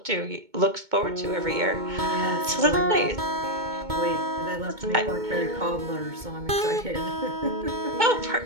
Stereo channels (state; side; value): late; left; 2.2 ms